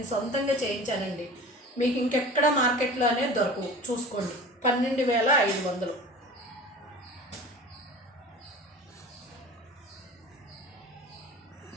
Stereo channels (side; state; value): both; normal; correlation 0.38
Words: సొంతంగా చేయించానండి. మీకు ఇంకెక్కడ మార్కెట్లో అనేది దొరకవు. చూసుకోండి, 12,500.